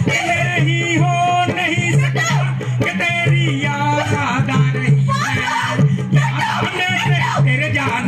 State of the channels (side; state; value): both; identical; correlation 1.00